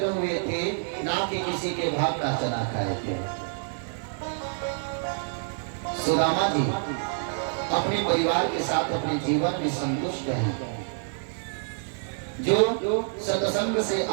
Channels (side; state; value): left; silent; digital silence